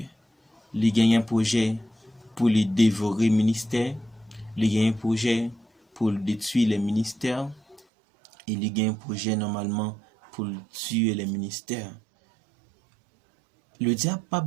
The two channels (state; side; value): drops out; left; at 7.8 s